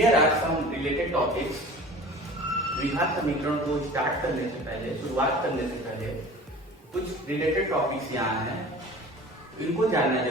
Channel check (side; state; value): both; normal; correlation 0.41